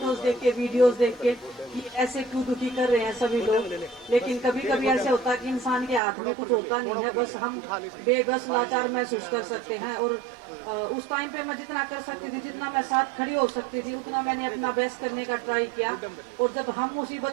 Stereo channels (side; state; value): left; drops out; at 6.0 s